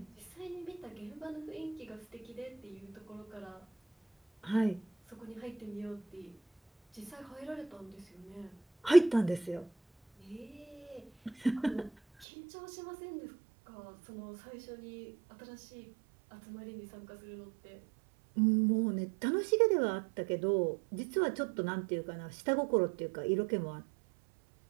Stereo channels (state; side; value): drops out; left; at 12.2 s